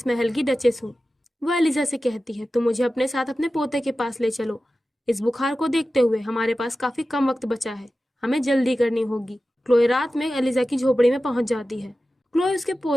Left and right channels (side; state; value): both; normal; correlation 0.94